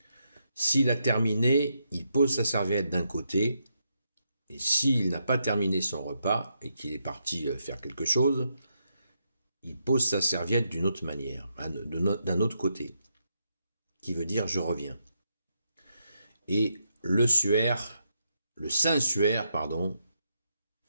S'il a terminé, il pose sa serviette d'un côté, et s'il n'a pas terminé son repas et qu'il est parti faire quelque chose, il pose sa serviette d'une autre manière, d'un autre côté, qui veut dire je reviens. Et le saint suaire,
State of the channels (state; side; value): inverted; both; correlation -0.81